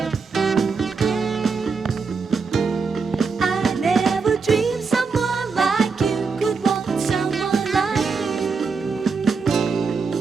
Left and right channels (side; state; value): left; quieter; 4.9 dB